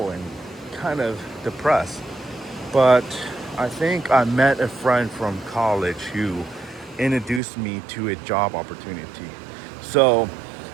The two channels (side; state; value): left; drops out; at 7.4 s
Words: and kind of depressed. But I think I met a friend from college who introduced me to a job opportunity. So